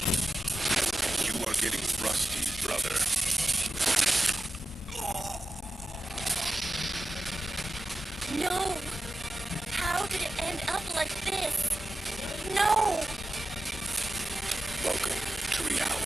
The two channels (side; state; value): both; normal; correlation 0.93